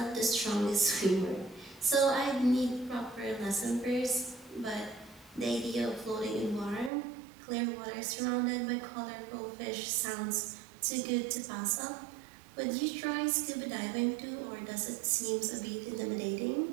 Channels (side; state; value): left; drops out; at 6.9 s